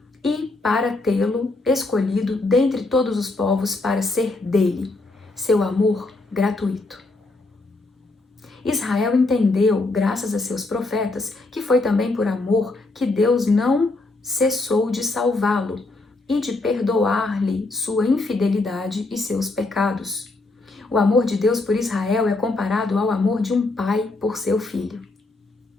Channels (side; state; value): right; quieter; 3.2 dB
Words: e para tê-lo escolhido dentre todos os povos para ser dele, seu amor gratuito. Israel entendeu, graças a seus profetas, que foi também por amor que Deus não cessou de salvá-lo e de perdoar-lhe sua infidelidade e seus pecados. O amor de Deus por Israel é comparado ao amor de um pai por seu filho.